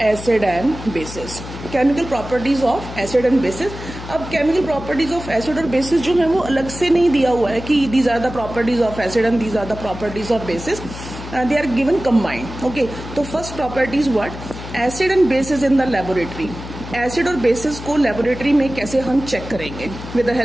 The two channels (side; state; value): left; noise; hum, 11 dB below the sound